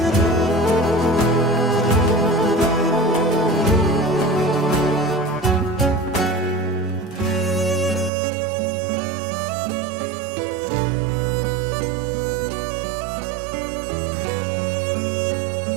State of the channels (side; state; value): left; drops out; at 8.1 s